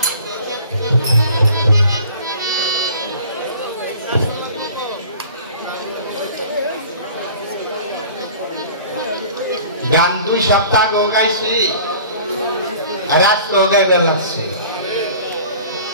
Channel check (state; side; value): inverted; both; correlation -0.45